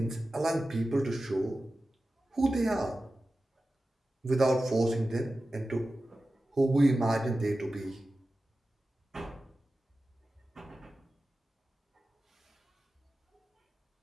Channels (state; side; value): normal; both; correlation 0.94